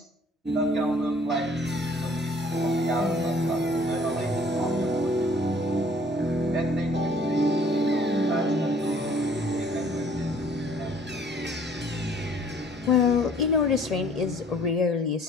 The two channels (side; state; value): both; normal; correlation 0.57